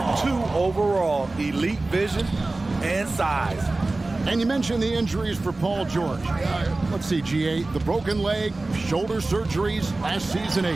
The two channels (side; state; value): left; quieter; 3.1 dB